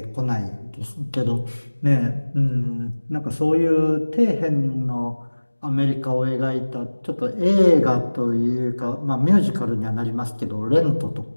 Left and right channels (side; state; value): both; inverted; correlation -1.00